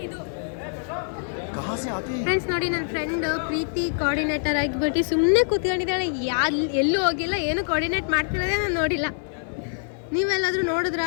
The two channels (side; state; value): right; silent; digital silence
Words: ಫ್ರೆಂಡ್ಸ್ ನೋಡಿ, ನನ್ನ ಫ್ರೆಂಡ್ ಪ್ರೀತಿ ಕೋಆರ್ಡಿನೇಟರ್ ಆಗಿಬಿಟ್ಟು ಸುಮ್ಮನೆ ಕೂತ್ಕೊಂಡಿದ್ದಾಳೆ. ಎಲ್ಲೂ ಹೋಗಿಲ್ಲ, ಏನು ಕೋಆರ್ಡಿನೇಟ್ ಮಾಡ್ತಿರೋದೇ ನಾನು ನೋಡಿಲ್ಲ. ನೀವೆಲ್ಲಾದ್ರೂ ನೋಡಿದ್ರ